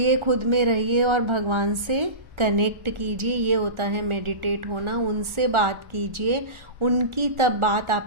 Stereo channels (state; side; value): late; left; 1.4 ms